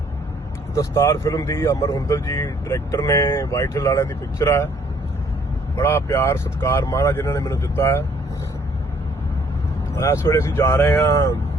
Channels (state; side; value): normal; both; correlation 0.63